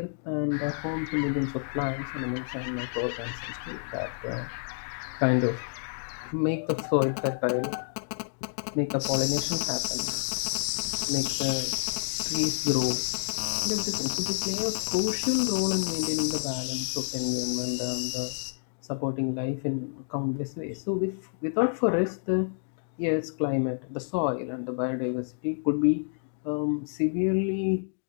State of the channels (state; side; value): silent; right; digital silence